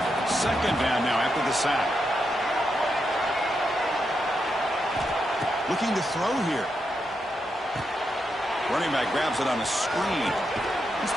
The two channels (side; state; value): both; normal; correlation 0.84